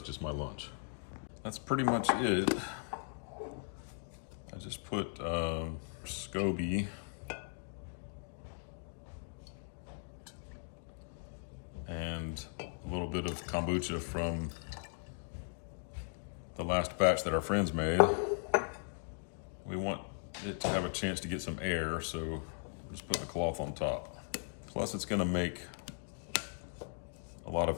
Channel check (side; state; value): right; silent; digital silence